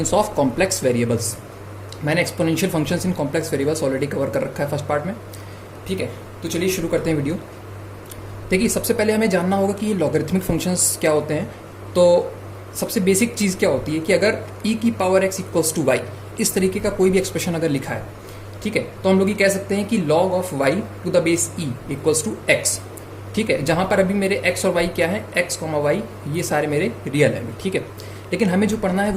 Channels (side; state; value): both; identical; correlation 1.00